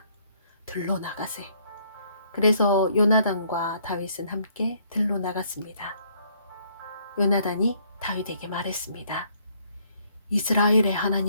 들로 나가세. 그래서 요나단과 다윗은 함께 들로 나갔습니다. 요나단이 다윗에게 말했습니다. 이스라엘의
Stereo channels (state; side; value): inverted; both; correlation -0.66